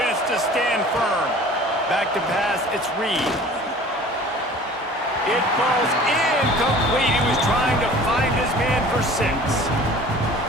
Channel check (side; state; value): both; normal; correlation 0.46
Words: to stand firm. Back to pass, it's Reed. It falls incomplete. He was trying to find his man for 6.